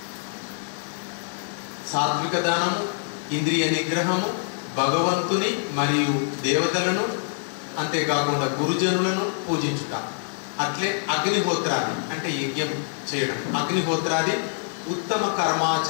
సాత్విక దానము, ఇంద్రియ నిగ్రహము, భగవంతుని మరియు దేవతలను అంతేకాకుండా గురుజనులను పూజించుట. అట్లే అగ్నిహోత్రాది అంటే యజ్ఞం చేయడం, అగ్నిహోత్రాది ఉత్తమ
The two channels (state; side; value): silent; right; 56 dB below the other